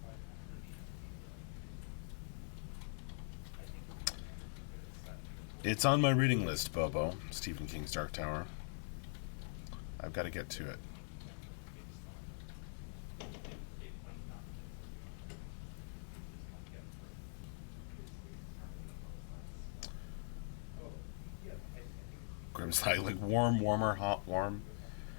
It's on my reading list, Bobo. Stephen King's Dark Tower. I've got to get to it. Grimslide, like warm, warmer, hot, warm.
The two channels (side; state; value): right; silent; digital silence